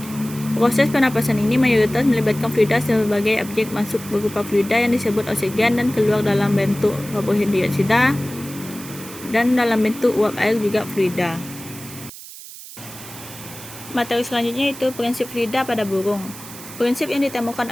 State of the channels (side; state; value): right; noise; hiss, 15 dB below the sound